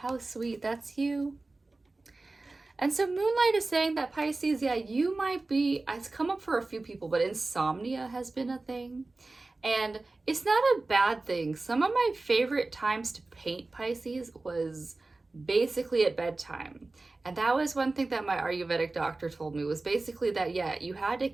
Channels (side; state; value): left; quieter; 3.3 dB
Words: sweet, that's you. And so Moonlight is saying that Pisces, yeah, you might be, it's come up for a few people, but insomnia has been a thing. And it's not a bad thing. Some of my favorite times to paint Pisces was basically at bedtime. And that was one thing that my Ayurvedic doctor told me, was basically that, yeah, you had to